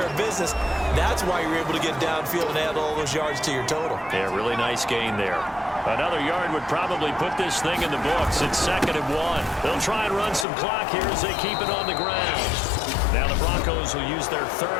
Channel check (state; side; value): drops out; right; at 10.5 s